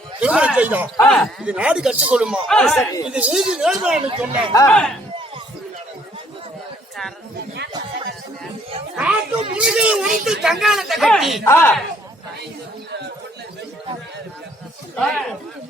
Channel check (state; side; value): normal; both; correlation 0.64